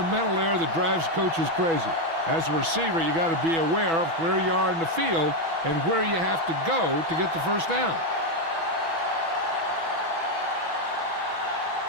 mental error that drives coaches crazy. As a receiver, you got to be aware of where you are in the field and where you have to go to get the first down.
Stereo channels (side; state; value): left; late; 6.1 ms